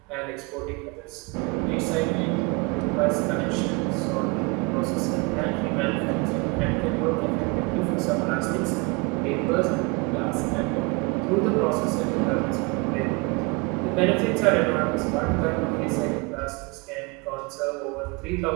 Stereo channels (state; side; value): quieter; left; 28.9 dB